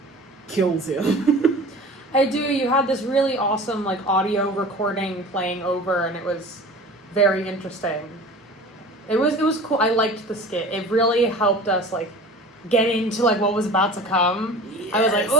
kills him. I do. You had this really awesome audio recording playing over, and it was very interesting. It was cool. I liked the skit. It really helped us get into what was about to come. Yes. I was like,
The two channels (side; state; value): both; normal; correlation 0.40